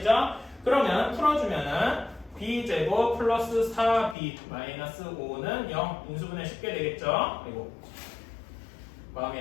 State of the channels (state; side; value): drops out; right; at 4.2 s